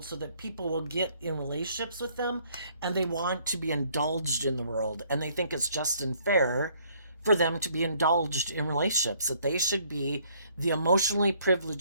so that people will get in relationships with them, and they want to be indulged in the world, and they think it's just and fair for them to be indulged in relationships, that they should be the emotionally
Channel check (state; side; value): inverted; both; correlation -0.64